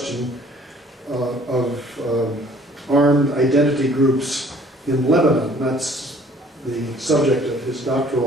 of armed identity groups in Lebanon. That's the subject of his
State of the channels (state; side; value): normal; both; correlation 0.56